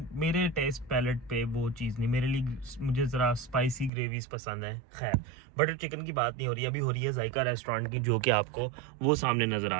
मेरे टेस्ट पैलेट पे वो चीज़ नहीं, मेरे लिए मुझे ज़रा स्पाइसी ग्रेवीज़ पसंद है। खैर, बटर चिकन की बात नहीं हो रही, अभी हो रही है जायका रेस्टोरेंट की, जो कि आपको वो सामने नज़र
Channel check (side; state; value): left; drops out; at 3.9 s